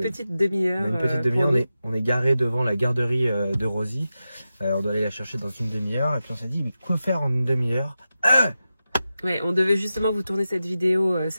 petite demi-heure. On est garé devant la garderie de Rosie. On doit aller la chercher dans une demi-heure et puis on s'est dit mais quoi faire en une demi-heure? Ouais, on devait justement vous tourner cette vidéo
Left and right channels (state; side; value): inverted; both; correlation -0.92